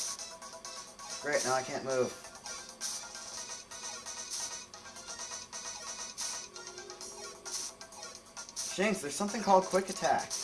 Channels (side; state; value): both; identical; correlation 1.00